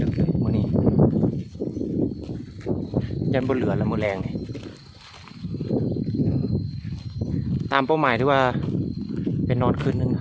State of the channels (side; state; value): both; identical; correlation 1.00